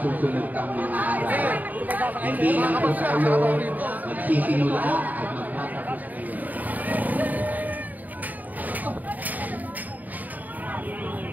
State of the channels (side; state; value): left; late; 0.081 ms